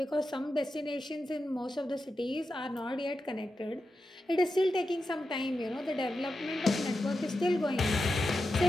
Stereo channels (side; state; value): both; normal; correlation 0.90